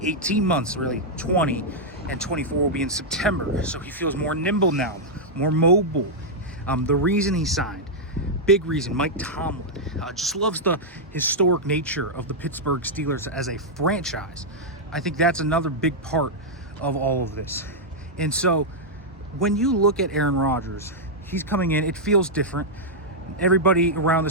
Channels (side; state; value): both; normal; correlation -0.06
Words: 18 months, really 20, and 24 will be in September. So he feels more nimble now, more mobile. The reason he signed, big reason, Mike Tomlin just loves the historic nature of the Pittsburgh Steelers as a franchise. I think that's another big part of all of this. And so when you look at Aaron Rodgers, he's coming in, it feels different. Everybody around